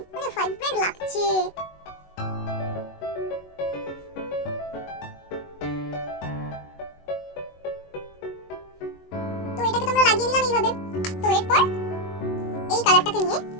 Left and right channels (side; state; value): right; late; 21 ms